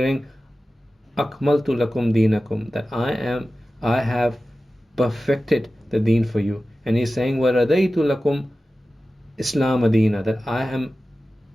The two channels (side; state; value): both; normal; correlation 0.95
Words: Akmaltu lakum deenakum, that I have perfected the deen for you. And He's saying, وَرَضَيْتُ لَكُمْ إِسْلَامَ دِينًا, that